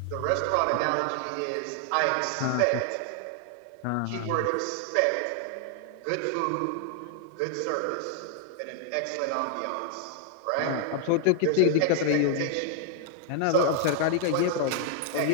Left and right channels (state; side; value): different; both; correlation 0.00